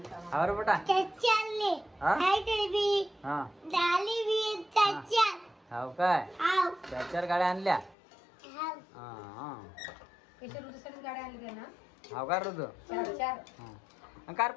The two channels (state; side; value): drops out; right; at 8.0 s